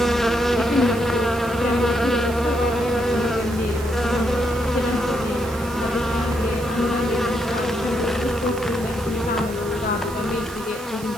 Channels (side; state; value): right; noise; hiss, 17 dB below the sound